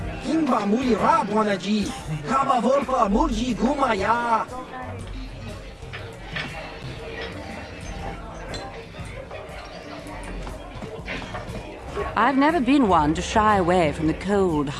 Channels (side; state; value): both; identical; correlation 1.00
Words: Kimba muli rabwanaji, kaba volpa mulji gumaya. I've never been one to shy away from the cold,